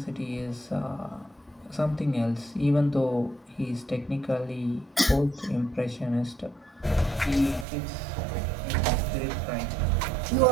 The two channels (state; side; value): drops out; left; at 7.7 s